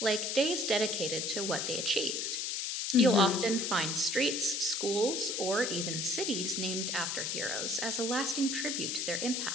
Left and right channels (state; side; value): noise; left; hiss, 1 dB below the sound